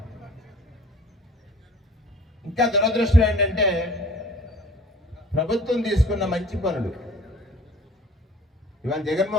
ఇంకా దురదృష్టం ఏంటంటే ప్రభుత్వం తీసుకున్న మంచి పనులు ఇవాళ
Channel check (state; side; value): normal; both; correlation 0.48